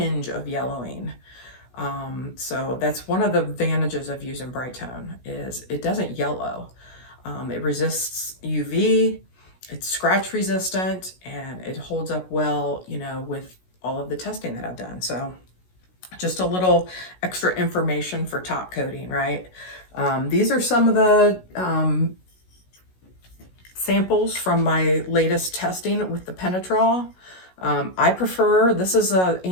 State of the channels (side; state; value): right; late; 16 ms